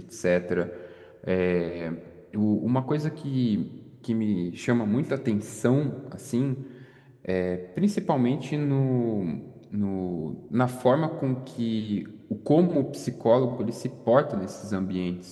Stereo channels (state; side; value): identical; both; correlation 1.00